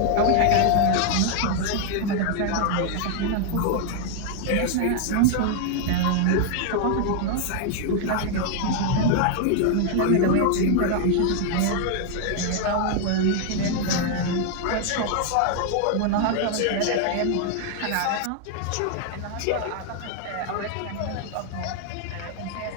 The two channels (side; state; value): both; different; correlation 0.00